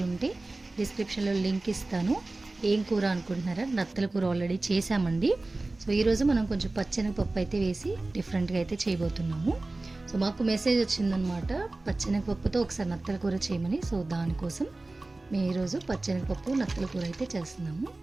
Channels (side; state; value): left; quieter; 3.1 dB